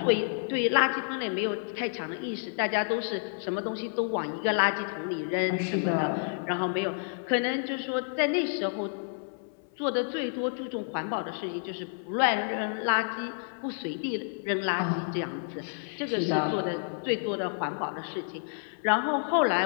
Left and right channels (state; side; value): silent; right; 58 dB below the other